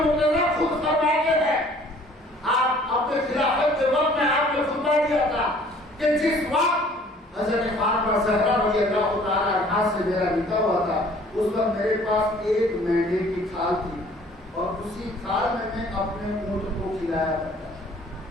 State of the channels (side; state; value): both; normal; correlation 0.54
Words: خود فرماتے ہیں, آپ اپنے خلافت کے وقت میں آپ نے خطبہ دیا تھا کہ جس وقت حضرت فاطمہ زہرا رضی اللہ تعالیٰ عنہا سے میرا نکاح ہوا تھا اس وقت میرے پاس ایک مینڈے کی کھال تھی اور اسی کھال میں اپنے اونٹ کو کھلایا کرتا تھا.